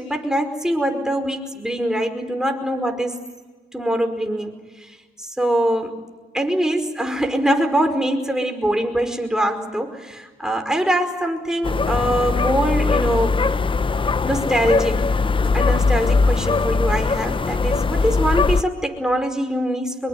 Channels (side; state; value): both; normal; correlation 0.80